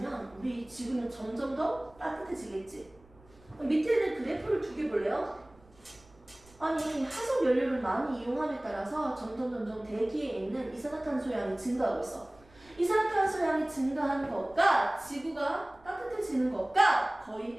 우리 지구는 점점 더 따뜻해지겠지. 밑에 있는 그래프를 두 개 볼래요? 아니, 화석 연료를 많이 이용함에 따라서 점점 대기에 있는 이산화탄소 양이 증가하고 있어. 이산화탄소 양이 증가하는 것과 지구가 따뜻해지는 것과 거의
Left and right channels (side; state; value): right; noise; rumble, 27 dB below the sound